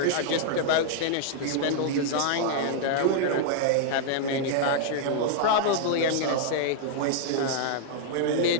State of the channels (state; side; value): different; both; correlation -0.01